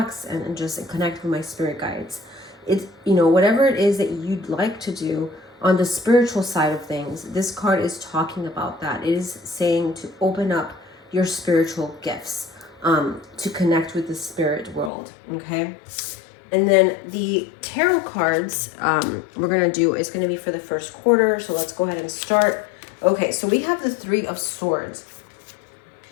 and just connect with my spirit guides. It's, whatever it is that you'd like to do on the spiritual side of things, this card is talking about that. It is saying to open up your spiritual gifts, to connect with the spirit world, okay? And then the tarot cards we're going to do is going to be for the first quarter. So let's go ahead and start. Okay, so we have the Three of Swords.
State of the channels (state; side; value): drops out; right; at 14.9 s